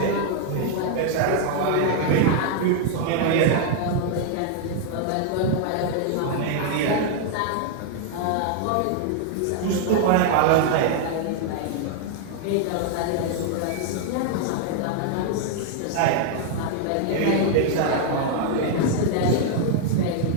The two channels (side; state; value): both; different; correlation 0.00